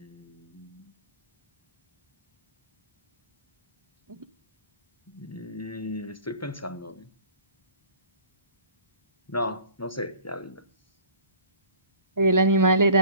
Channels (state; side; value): inverted; both; correlation -0.48